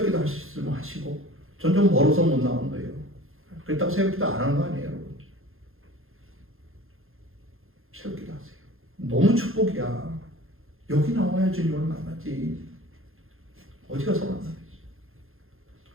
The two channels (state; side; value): late; left; 0.60 ms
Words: 할 수 있으면 하시고 전 좀 멀어서 못 나오는 거예요. 그렇다고 새벽기도 안 하는 거 아니에요, 여러분. 새벽기도 하세요. 너무 축복이야. 여기 나와야 주님을 만나지. 어디 가서 만나겠어.